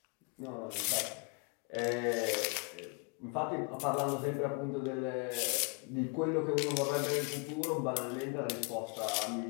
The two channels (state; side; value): quieter; right; 34.4 dB